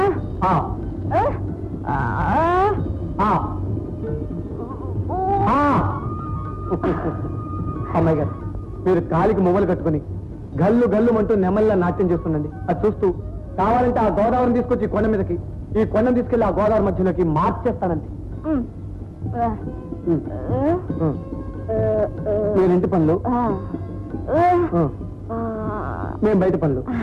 అమ్మాయి గారు, మీరు కాలికి మువ్వలు కట్టుకుని గల్లు గల్లు అంటూ నెమల్లా నాట్యం చేస్తుండండి. అది చూస్తూ కావాలంటే ఆ గోదావరిని తీసుకొచ్చి ఈ కొండ మీదకి, ఈ కొండను తీసుకెళ్లి ఆ గోదావరి మధ్యలోకి మార్చేస్తానండి. నేను ఇంటి పనులు, మేము బయట పనులు.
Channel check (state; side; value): identical; both; correlation 1.00